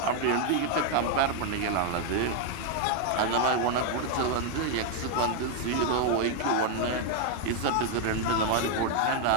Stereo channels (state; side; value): different; both; correlation 0.00